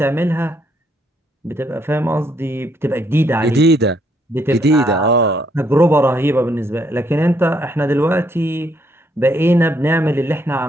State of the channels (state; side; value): normal; both; correlation 0.72